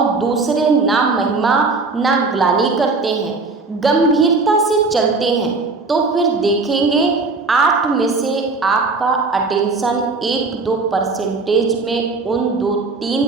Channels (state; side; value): quieter; left; 3.9 dB